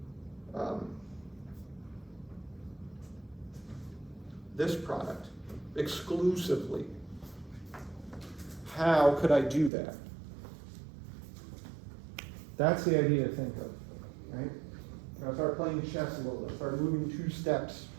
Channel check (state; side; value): drops out; left; at 9.7 s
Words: this product exclusively? How could I do that? That's the idea to think of, right? I'll start playing chess a little bit, start moving 2 steps.